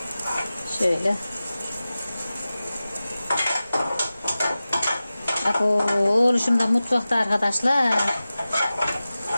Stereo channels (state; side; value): inverted; both; correlation -0.96